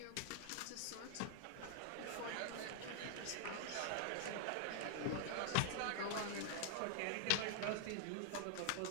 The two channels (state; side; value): different; both; correlation 0.00